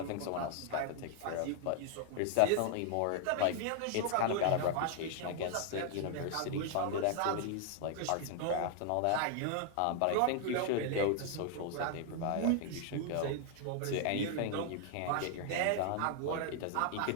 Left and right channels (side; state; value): both; different; correlation 0.00